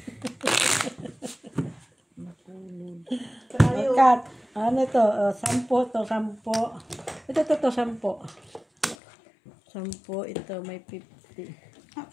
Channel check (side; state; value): right; drops out; at 9.0 s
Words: Kat, ano ito? 10 to, 10. Ito, 10. 10, ito may 50.